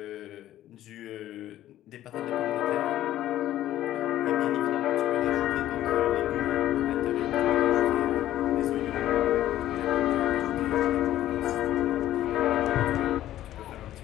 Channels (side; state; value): right; quieter; 13.3 dB